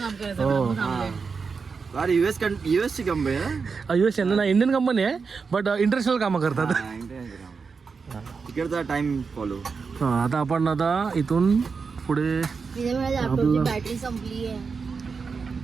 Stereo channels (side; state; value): left; quieter; 5.2 dB